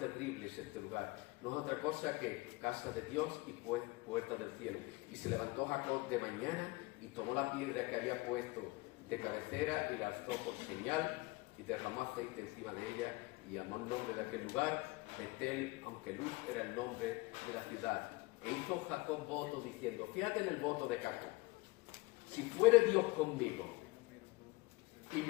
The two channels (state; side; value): quieter; right; 22.2 dB